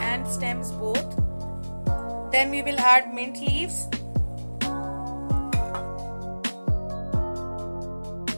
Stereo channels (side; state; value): both; inverted; correlation -1.00